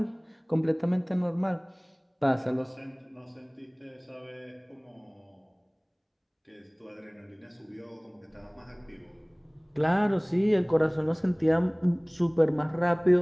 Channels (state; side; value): identical; both; correlation 1.00